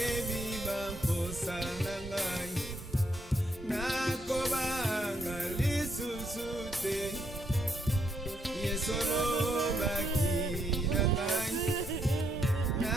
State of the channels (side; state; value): both; normal; correlation 0.76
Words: bamposa na ngai nakobanga lisusu te Yesu lobaki na ngai